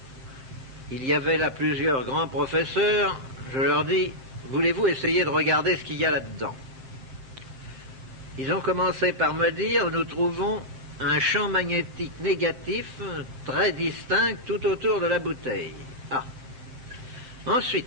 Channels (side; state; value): left; late; 7.7 ms